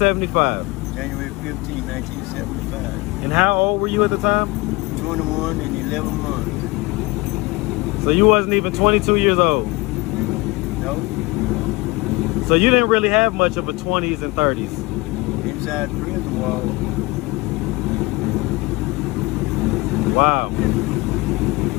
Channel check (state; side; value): quieter; right; 23.6 dB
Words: January 15, 1975. And how old were you at the time? 21 and 11 months. So you wasn't even 22 years old? No. So you didn't really have much of a 20s and 30s? Inside prison wall. Wow.